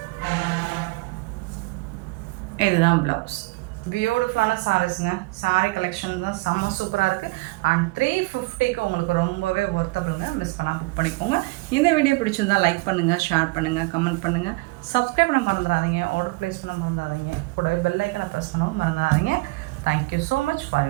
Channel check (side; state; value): left; quieter; 25.0 dB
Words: இதுதான் ப்ளவுஸ். பியூட்டிஃபுல்லான சாரீஸுங்க. சாரீ கலெக்ஷன் தான் செம்ம சூப்பராக இருக்குது. அண்ட் 350க்கு உங்களுக்கு ரொம்பவே ஒர்த்தபிளுங்க. மிஸ் பண்ணால் புக் பண்ணிக்கோங்க. இந்த வீடியோ பிடிச்சிருந்தால் லைக் பண்ணுங்கள், ஷேர் பண்ணுங்கள், கமெண்ட் பண்ணுங்கள், சப்ஸ்கிரைப் பண்ண மறந்துடாதீங்க, ஆர்டர் ப்ளேஸ் பண்ண மறந்துடாதீங்க, கூடவே பெல் ஐக்கனை ப்ரெஸ் பண்ணவும் மறந்துடாதீங்க. Thank you so much for